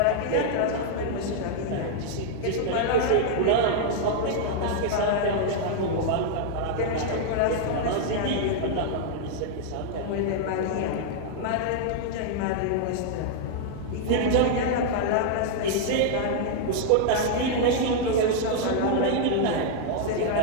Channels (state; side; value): different; both; correlation -0.01